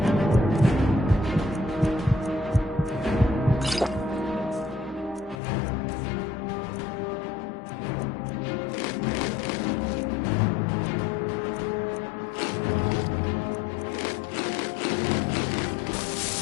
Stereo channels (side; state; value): right; drops out; at 5.4 s